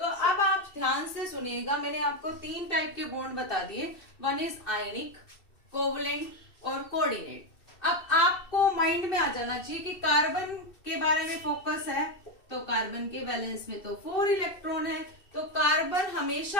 अब आप ध्यान से सुनिएगा, मैंने आपको 3 टाइप के बॉन्ड बता दिए, वन इज आयनिक, कोवलेंट और कोऑर्डिनेट। अब आपको माइंड में आ जाना चाहिए कि कार्बन के बारे में फोकस है, तो कार्बन के वैलेंस में तो 4 इलेक्ट्रॉन है, तो कार्बन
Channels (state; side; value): late; right; 2.7 ms